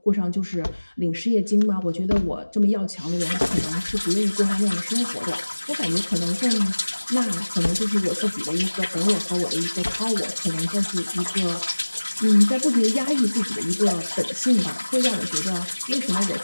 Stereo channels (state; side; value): inverted; both; correlation -1.00